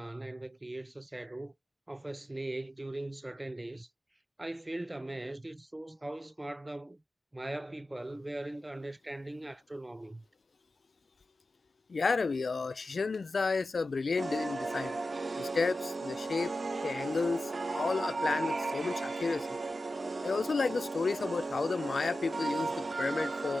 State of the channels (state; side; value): normal; both; correlation 0.93